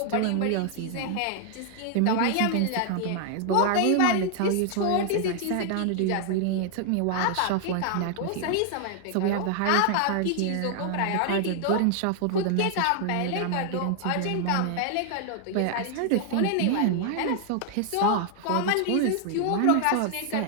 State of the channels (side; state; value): both; different; correlation 0.00